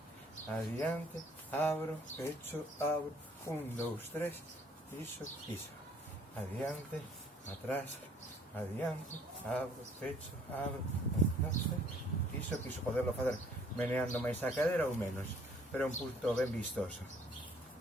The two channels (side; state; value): both; normal; correlation 0.59